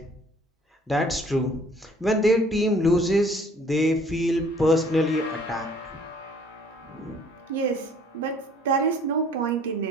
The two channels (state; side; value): normal; both; correlation 0.56